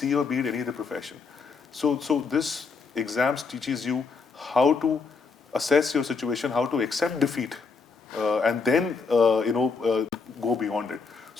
or be it any other profession. So this exams teaches you how to assess your situation, how to accept defeat, and then go beyond it.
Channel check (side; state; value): right; quieter; 4.7 dB